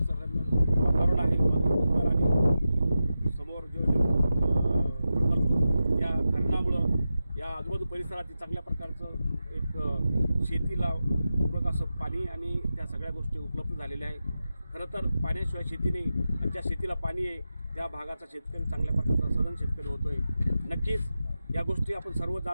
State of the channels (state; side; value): inverted; both; correlation -0.92